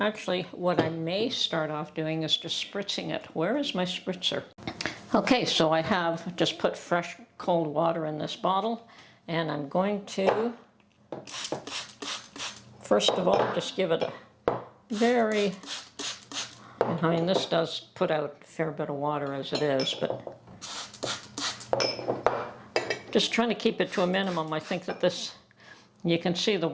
what I may start off doing is just spritzing it. Where is my spritzer? Okay, so I have just put fresh cold water in this bottle, and I'm going to, first of all, just give it a very, I mean, this does put out a fair bit of water as it is, but just trying to keep it to a minimum. I think that this, you can see the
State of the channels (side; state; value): both; identical; correlation 1.00